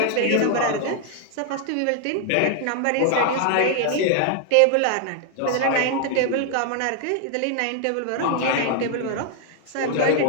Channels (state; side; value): different; both; correlation 0.00